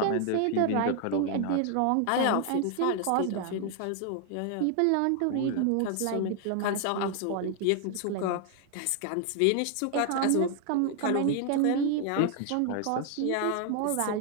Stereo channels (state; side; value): different; both; correlation 0.00